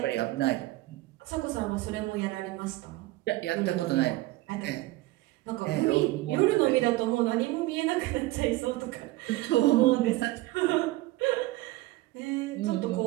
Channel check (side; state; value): left; quieter; 18.6 dB